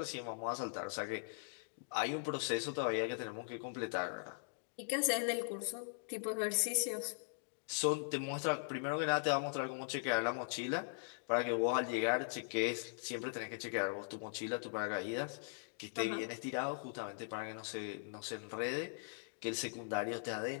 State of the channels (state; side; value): silent; right; digital silence